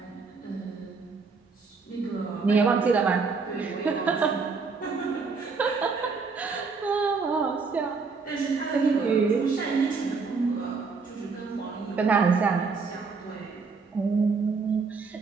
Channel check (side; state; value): left; quieter; 4.7 dB